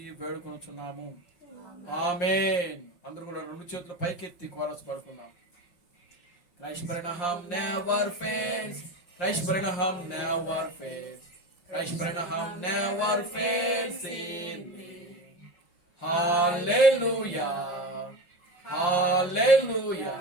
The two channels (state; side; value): late; right; 5.7 ms